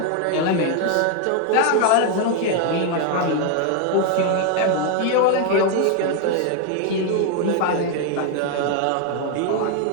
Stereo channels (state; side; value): different; both; correlation 0.00